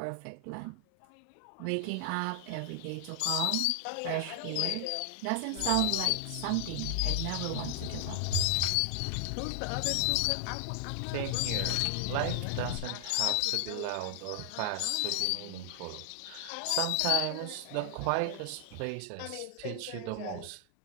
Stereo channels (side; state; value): both; different; correlation 0.00